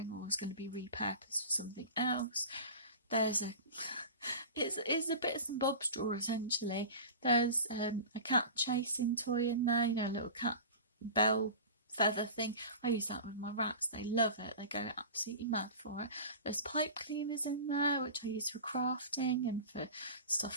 or is going to be repurposed for something else. There's it's a bits and bobs drawer essentially. There's a cat chasing toy in there, you know, a little cat bell feather thing. I use that with my rats, they love it, they go absolutely mad for it. There's pipe cleaners in there, which I use for crafting and for stuff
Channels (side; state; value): both; inverted; correlation -0.34